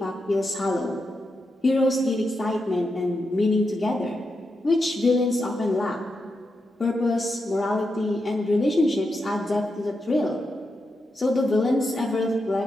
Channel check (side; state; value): both; normal; correlation 0.86